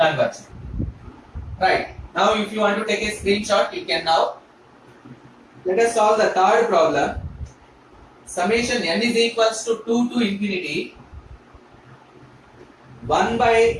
Right. Now if you want to take a screenshot, you can now. Let us solve the third problem. Summation n is equals to 2 to infinity 1 by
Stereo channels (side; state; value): both; identical; correlation 1.00